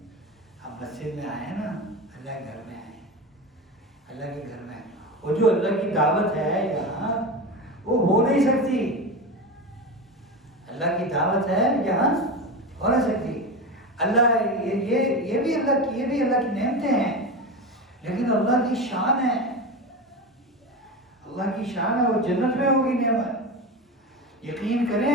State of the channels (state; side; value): normal; both; correlation 0.23